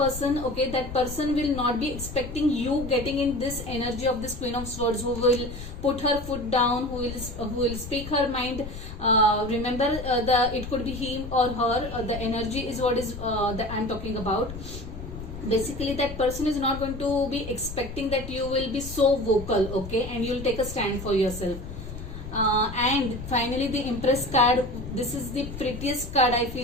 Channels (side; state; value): left; noise; rumble, 10 dB below the sound